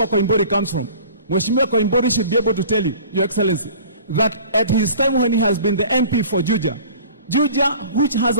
Koimburi comes from. Mheshimiwa Koimburi should be able to tell you, Your Excellency, that at his time when he has been the MP for Juja, which has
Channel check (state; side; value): inverted; both; correlation -0.45